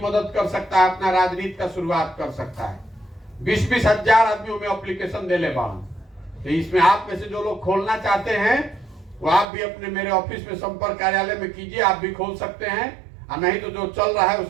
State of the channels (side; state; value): left; drops out; at 9.5 s